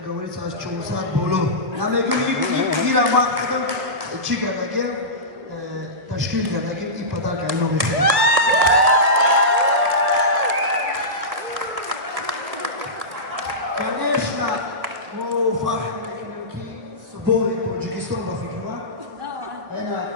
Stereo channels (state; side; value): late; left; 1.7 ms